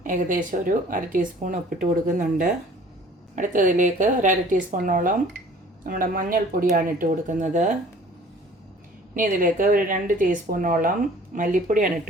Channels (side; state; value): both; normal; correlation 0.50